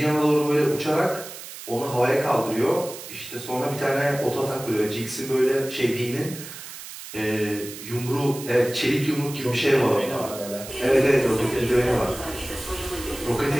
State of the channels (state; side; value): noise; right; hiss, 12 dB below the sound